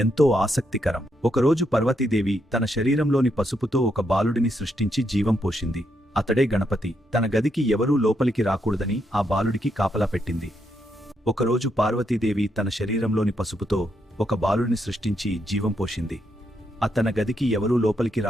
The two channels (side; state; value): both; normal; correlation 0.79